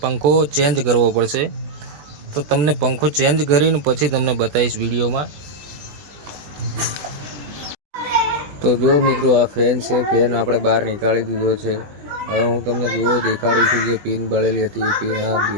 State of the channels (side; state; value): left; late; 20 ms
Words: પંખો ચેન્જ કરવો પડશે। તો તમને પંખો ચેન્જ કરીને પછી તમને બતાવીશ વિડીયોમાં। તો જો મિત્રો, આ ફેન છે, ફેન આપણે બહાર નીકાળી દીધો છે। હવે હું તમને દેખાડું છું, જે પિન બળેલી હતી એ પિન આ